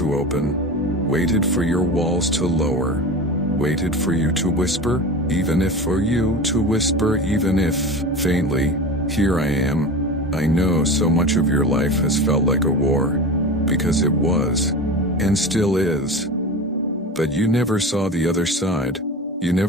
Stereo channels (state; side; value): normal; both; correlation 0.30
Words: open. Waited for your walls to lower. Waited for you to whisper, even if for you to whisper, even if, faintly, here I am. I know so much of your life has felt like a war, because it was, and still is. But you never saw the other side. You